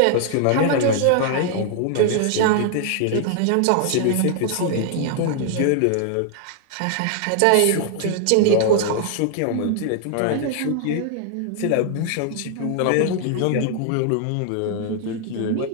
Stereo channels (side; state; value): both; different; correlation 0.00